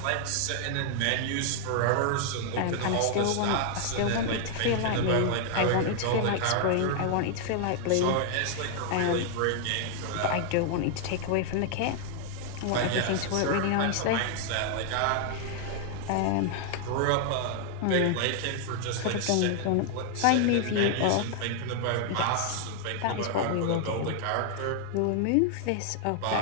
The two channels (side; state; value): both; different; correlation 0.00